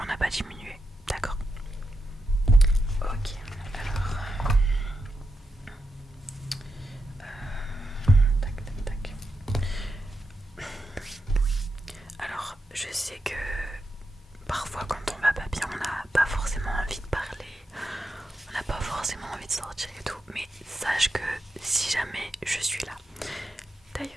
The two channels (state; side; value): normal; both; correlation 0.86